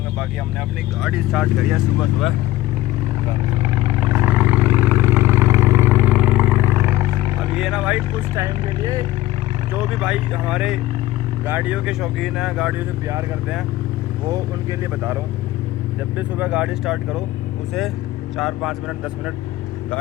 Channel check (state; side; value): quieter; right; 15.9 dB